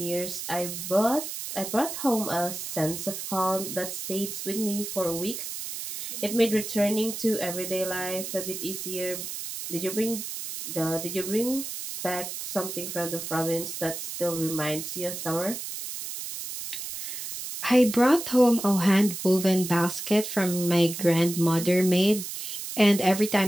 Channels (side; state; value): right; noise; hiss, 7 dB below the sound